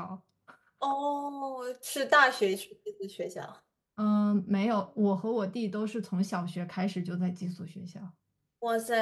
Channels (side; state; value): both; identical; correlation 1.00